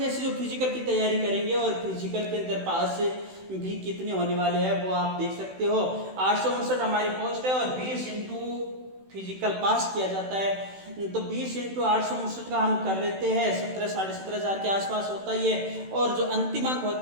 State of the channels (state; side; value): late; left; 16 ms